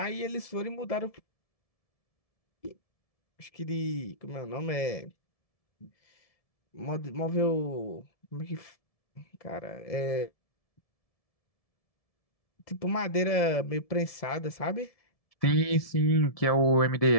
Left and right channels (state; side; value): late; right; 1.7 ms